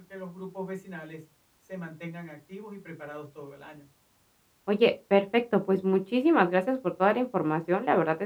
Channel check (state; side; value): identical; both; correlation 1.00